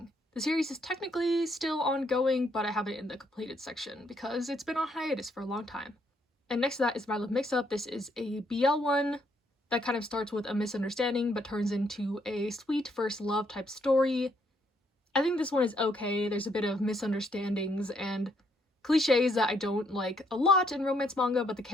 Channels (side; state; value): both; normal; correlation 0.72